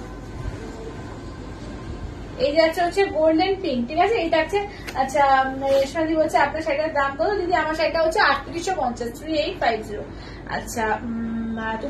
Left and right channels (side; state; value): both; identical; correlation 1.00